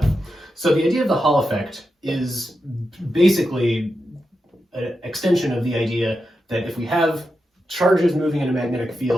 So the idea of the Hall effect is basically an extension of the idea that if we have charges moving in a magnetic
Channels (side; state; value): both; normal; correlation 0.88